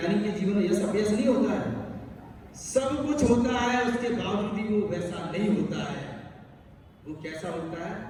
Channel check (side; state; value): both; identical; correlation 1.00